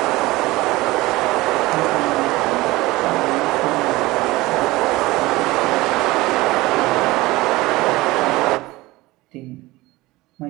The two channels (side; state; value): left; quieter; 19.8 dB